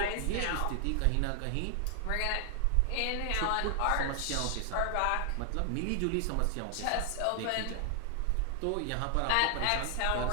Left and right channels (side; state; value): both; different; correlation 0.00